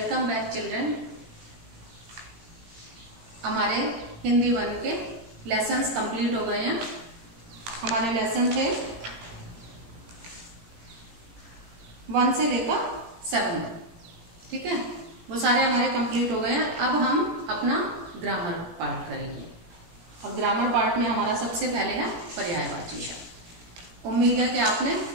back children. हमारे हिंदी 1 के lessons complete हो गए हैं। हमारे लेसन थे 1 से लेकर 7 तक, ठीक है। वो सारे हमारे कंप्लीट हो गए हैं। अब हम अपना ग्रामर पार्ट करेंगे और ग्रामर पार्ट में हमारा सबसे पहले है पर्यायवाची शब्द। उम्मीद है कि आपने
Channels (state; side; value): late; left; 17 ms